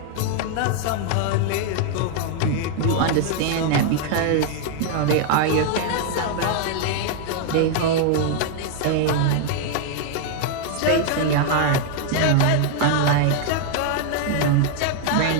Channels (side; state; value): both; different; correlation 0.00